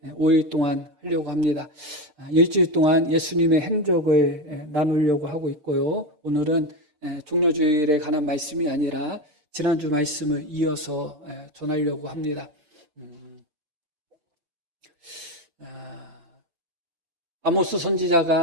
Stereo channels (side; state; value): left; late; 6.7 ms